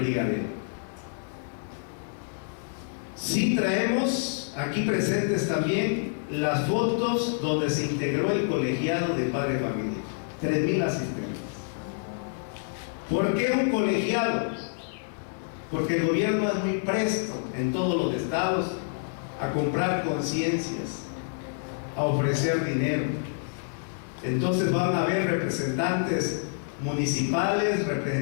Sí traemos aquí presentes también las fotos donde se integró el colegiado de padre de familia, 3,000 asistentes. ¿Por qué un colegiado? Porque el gobierno es muy presto en todos los estados a comprar conciencias, a ofrecer dinero. Entonces van a haber representantes municipales,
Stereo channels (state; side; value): silent; right; digital silence